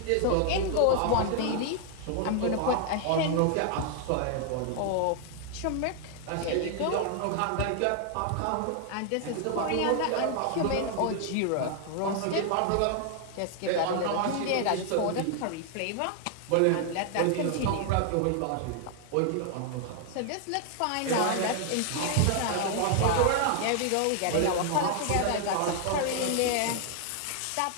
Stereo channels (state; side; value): different; both; correlation 0.00